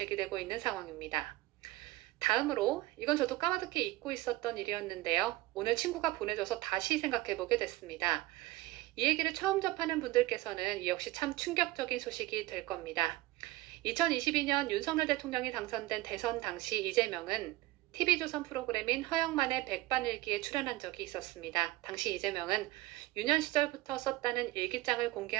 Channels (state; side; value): quieter; left; 18.5 dB